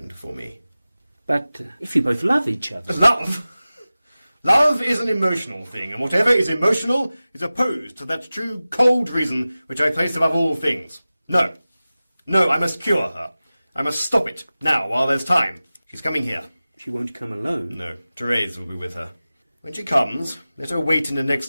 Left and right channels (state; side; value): inverted; both; correlation -0.96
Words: for me. But if you both love each other... Love? Love is an emotional thing, and whatever is emotional is opposed to that true cold reason which I place above all things. No. No, I must cure her. I must stop it, now, while there's time. She's coming here. She won't come alone? No, Therese will be with her. When she comes, let her wait in the